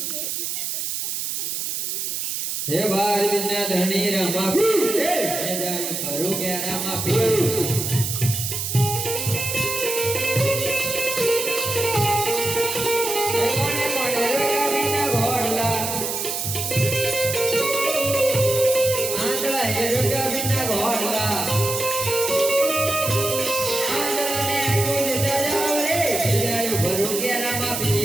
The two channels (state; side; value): noise; right; hiss, 3 dB below the sound